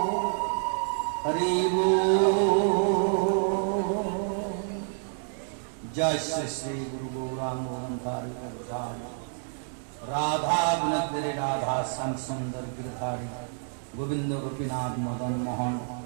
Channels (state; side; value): silent; left; digital silence